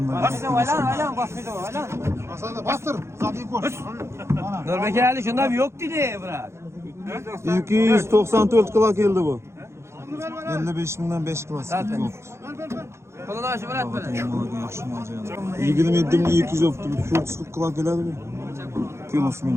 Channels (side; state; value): left; late; 0.13 ms